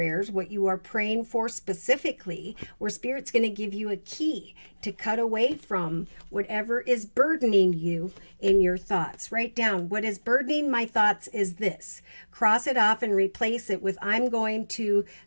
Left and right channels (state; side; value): inverted; both; correlation -1.00